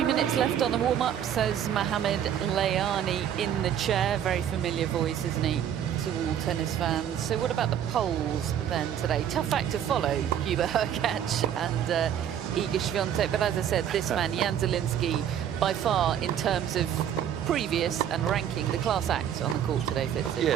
minutes left on the warm-up, says Mohamed Layani in the chair. Very familiar voice, isn't he, to all tennis fans. So what about the polls then today? Tough act to follow, Hubert Hurkacz and Iga Swiatek. But as I said, this man, Jan Zielinski, by far, in terms of previous and ranking, the class act on the court today, Fitzy.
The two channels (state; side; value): quieter; left; 9.7 dB